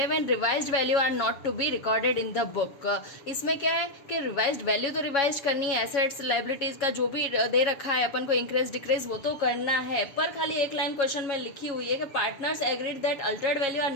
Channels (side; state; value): right; late; 7.2 ms